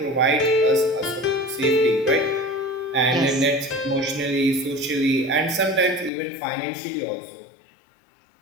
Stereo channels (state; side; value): drops out; right; at 6.1 s